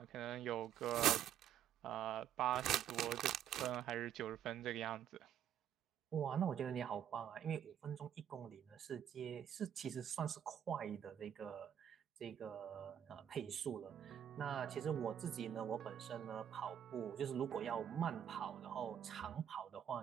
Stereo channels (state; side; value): quieter; left; 9.6 dB